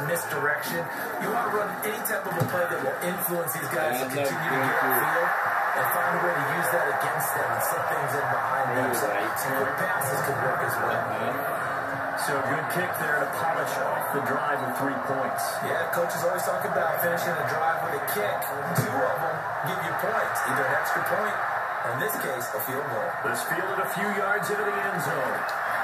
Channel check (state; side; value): identical; both; correlation 1.00